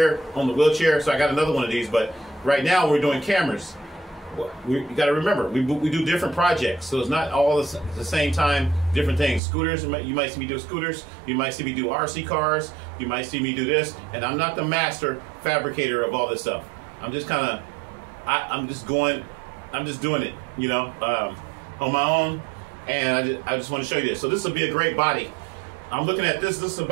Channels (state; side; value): drops out; left; at 9.4 s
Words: on the wheelchair, so I got another one of these. But right now we're doing cameras. You got to remember, we do different projects, so it's not all the same time, different things. Scooters, you might see me do scooters, you might see me do RC cars, you might see me do this, and I'm not the master fabricator of all this stuff. I'm just kind of, I'm just doing it, you know, on my own, and I just want to show you this. So this will be a great body. I'm looking at this. This is